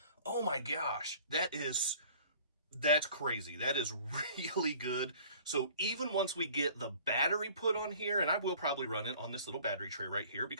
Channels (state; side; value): inverted; both; correlation -0.50